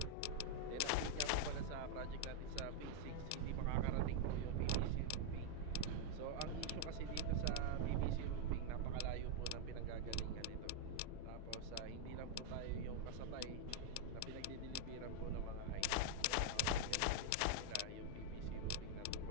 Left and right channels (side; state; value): both; different; correlation 0.00